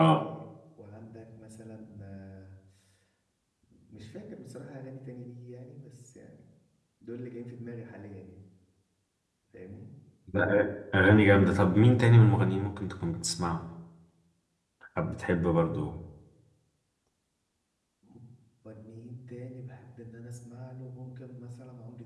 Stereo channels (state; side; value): identical; both; correlation 1.00